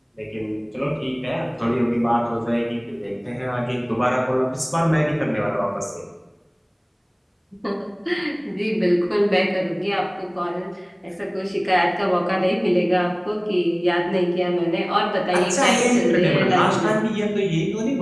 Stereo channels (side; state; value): both; identical; correlation 1.00